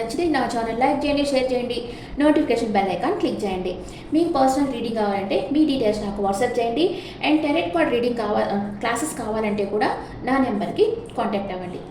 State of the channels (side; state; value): both; identical; correlation 1.00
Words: నా ఛానల్ లైక్ చేయండి, షేర్ చేయండి, నోటిఫికేషన్ బెల్ ఐకాన్ క్లిక్ చేయండి. మీకు పర్సనల్ రీడింగ్ కావాలంటే మీ డీటెయిల్స్ నాకు వాట్సాప్ చేయండి. And tarot card reading classes కావాలంటే కూడా నా నెంబర్కి కాంటాక్ట్ అవ్వండి.